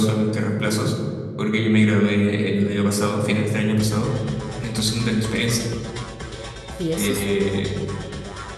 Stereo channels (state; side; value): identical; both; correlation 1.00